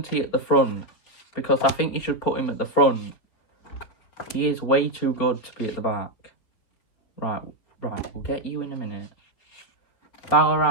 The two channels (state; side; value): late; right; 4.5 ms